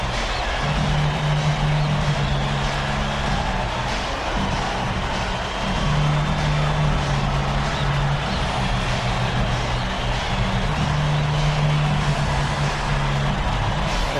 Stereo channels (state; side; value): identical; both; correlation 1.00